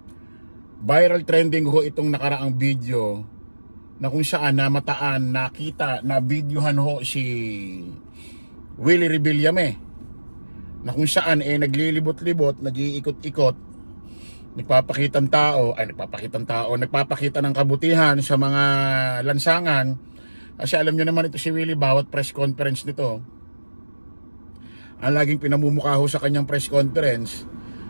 Viral trending ho itong nakaraang video na kung saan namataan, nakita, na videohan ho si Willie Rebillame, na kung saan naglilibot-libot, nag-iikot-ikot, nagpapakita ng kabutihan sa mga lansangan. Kasi alam nyo naman ito si Willie, bawat press conference nito, ang laging pinamumukha ho sa kanyang press conference,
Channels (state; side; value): inverted; both; correlation -1.00